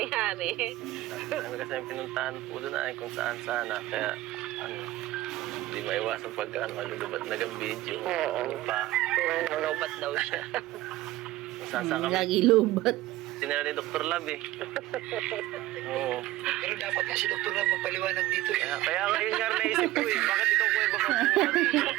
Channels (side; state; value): left; quieter; 16.4 dB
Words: Ano kasi yung pinuntahan po doon ay kung saan sana. Kaya, ano, hindi maiwasan pag malulubat nagang video. Oo. Ano pa. Nalobat daw siya. Kung saan saan kami. Lagi lubat. Sinira ni Dr. Lab eh. Oo. Pero dapat nga si Dr. Ram magpaliwanag dito. Kaya ngayon nga naisip ko eh. Bakit ikaw kuya baka pumunta dito?